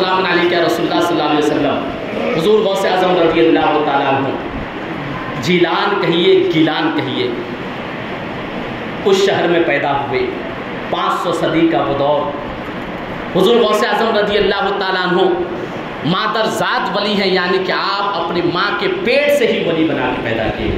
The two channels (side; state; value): both; identical; correlation 1.00